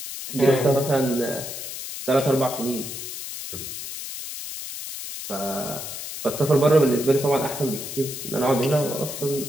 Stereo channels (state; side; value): noise; left; hiss, 8 dB below the sound